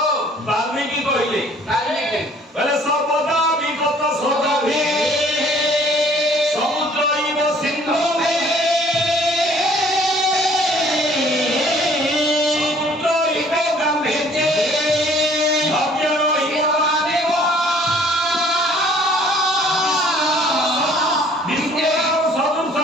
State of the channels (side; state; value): both; normal; correlation 0.56